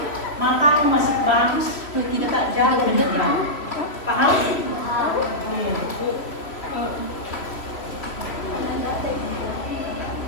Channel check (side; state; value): right; late; 3.0 ms